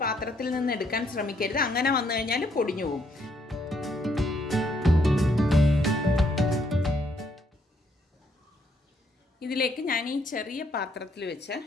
പാത്രത്തിൽ നിന്ന് എടുക്കാൻ ശ്രമിക്കരുത്. അങ്ങനെ വന്നു കഴിഞ്ഞാൽ പൊടിഞ്ഞു പോകും. ഇതിലേക്ക് ഞാൻ ഈ ചെറിയ പാത്രത്തിൽ വെച്ച്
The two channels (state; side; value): normal; both; correlation 0.71